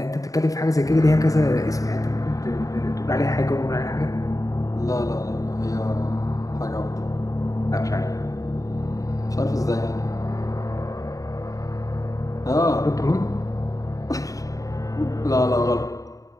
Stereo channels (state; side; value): late; right; 0.16 ms